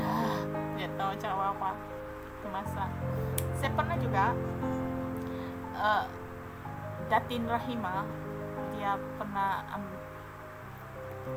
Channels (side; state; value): both; identical; correlation 1.00